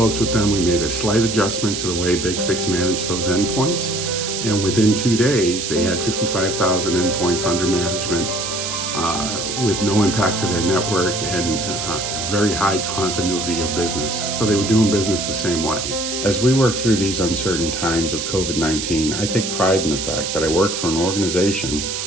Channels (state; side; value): noise; right; hiss, 4 dB below the sound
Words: with them. We made a slight adjustment to the way BigFix managed those endpoints. And within 2 days, they had 55,000 endpoints under management with no impact to their network and very high continuity of business. So they were doing business the same way. As we work through these uncertain times of COVID-19, I take pride in the fact that I work for an organization